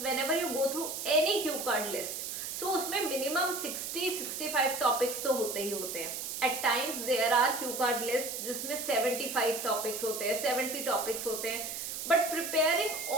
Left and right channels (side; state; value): right; noise; hiss, 5 dB below the sound